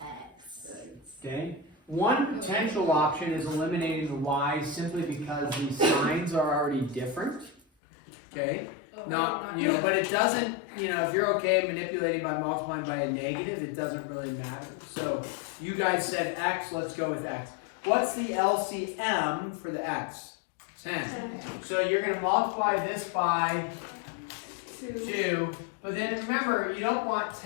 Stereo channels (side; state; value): right; drops out; at 7.6 s